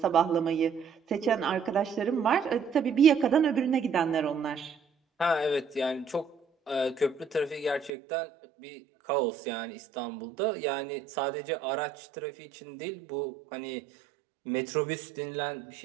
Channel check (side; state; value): left; drops out; at 7.9 s